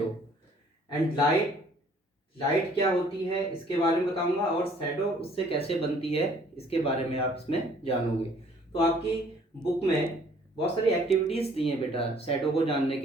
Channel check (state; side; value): normal; both; correlation 0.58